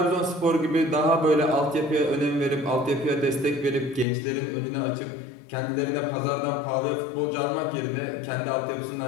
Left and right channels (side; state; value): right; drops out; at 4.0 s